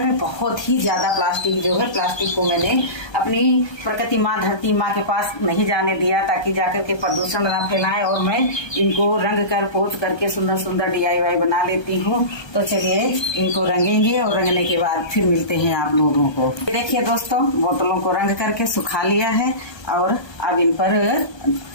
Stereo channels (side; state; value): right; late; 1.3 ms